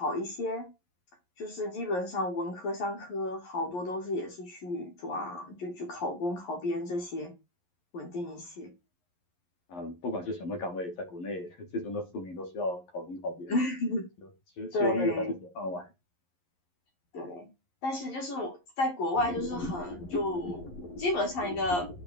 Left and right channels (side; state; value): right; late; 11 ms